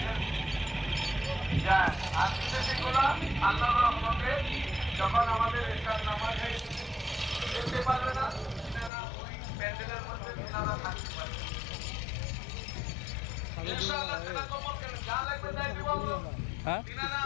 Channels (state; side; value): drops out; right; at 8.9 s